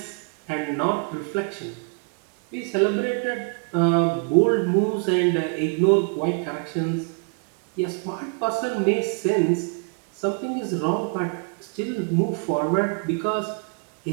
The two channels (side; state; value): left; quieter; 37.7 dB